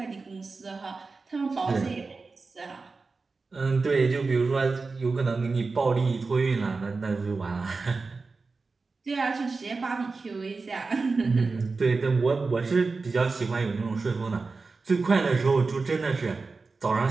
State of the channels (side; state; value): left; quieter; 4.1 dB